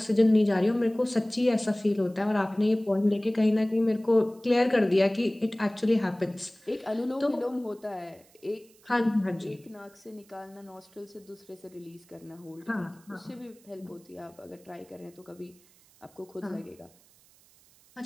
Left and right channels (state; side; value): noise; right; hiss, 29 dB below the sound